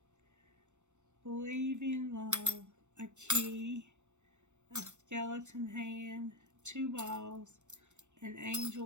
Believe in love, a key, a skeleton hand, two balls, an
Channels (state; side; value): late; left; 0.84 ms